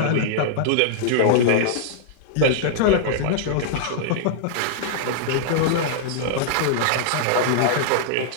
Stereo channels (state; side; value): different; both; correlation -0.01